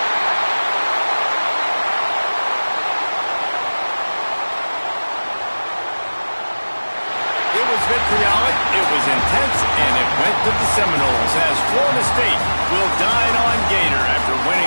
Vitriolic, it was intense, and it went to the Seminoles as Florida State will dine on Gator after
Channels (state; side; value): inverted; both; correlation -1.00